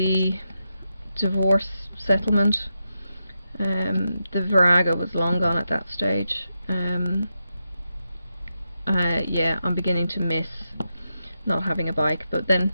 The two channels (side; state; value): both; inverted; correlation -0.87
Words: divorce settlement, the Virago was long gone at that stage. Yeah, I'm beginning to miss not having a bike, but then